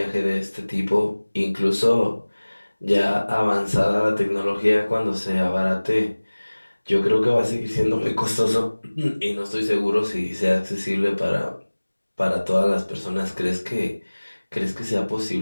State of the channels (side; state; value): both; inverted; correlation -1.00